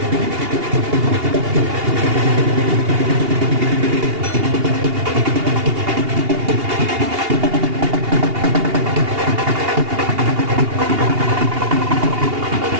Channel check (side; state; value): left; late; 2.8 ms